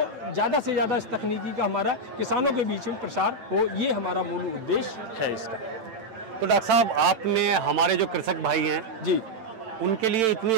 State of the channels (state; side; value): late; left; 9.0 ms